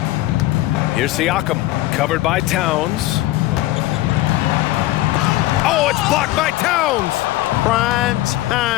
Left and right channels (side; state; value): right; quieter; 16.9 dB